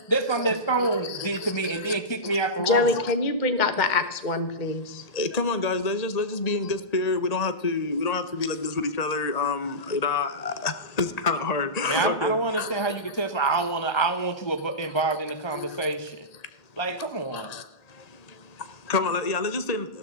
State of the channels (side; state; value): right; late; 1.8 ms